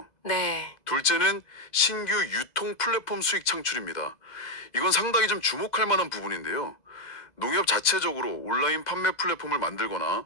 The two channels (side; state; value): right; late; 2.0 ms